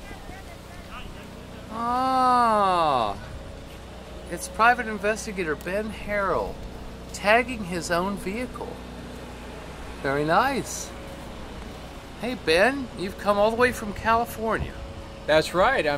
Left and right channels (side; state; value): both; identical; correlation 1.00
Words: Ah, it's private investigator Ben Harroll tagging his own vehicle. Very nice. Hey Ben, you've come all the way from California. That's right.